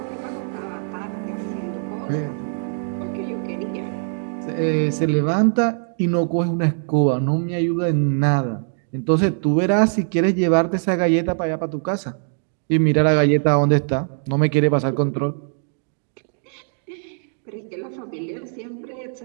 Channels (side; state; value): left; silent; digital silence